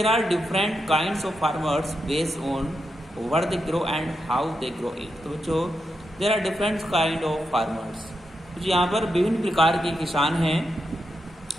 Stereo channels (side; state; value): both; normal; correlation 0.86